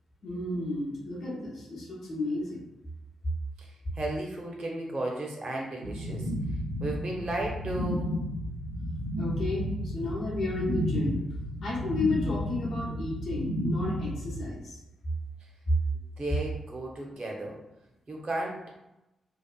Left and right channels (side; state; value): both; normal; correlation 0.76